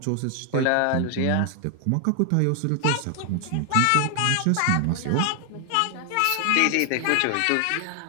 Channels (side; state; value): both; different; correlation 0.00